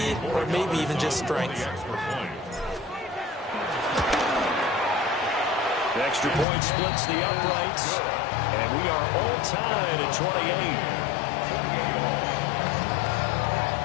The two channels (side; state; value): right; drops out; at 6.5 s